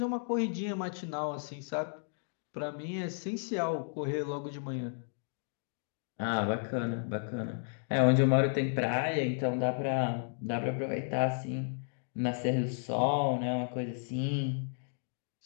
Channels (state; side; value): silent; right; digital silence